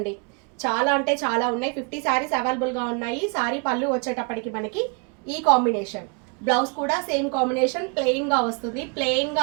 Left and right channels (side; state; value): left; quieter; 35.7 dB